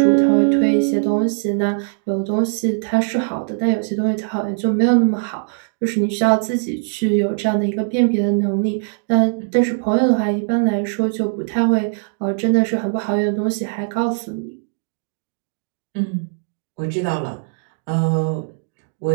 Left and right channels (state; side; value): silent; left; digital silence